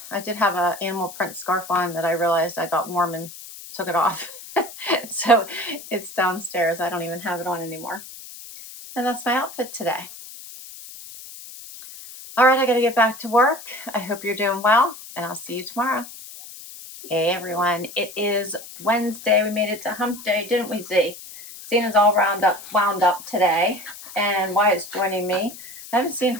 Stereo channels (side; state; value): left; noise; hiss, 15 dB below the sound